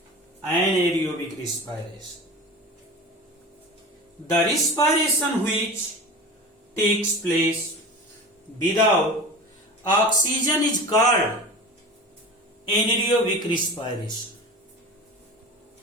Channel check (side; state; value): both; normal; correlation 0.33